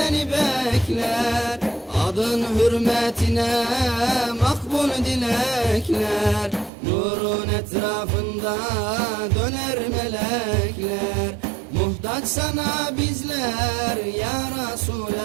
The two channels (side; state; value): left; drops out; at 6.7 s